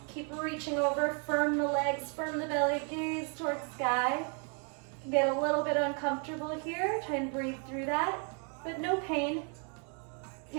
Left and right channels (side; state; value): left; quieter; 39.3 dB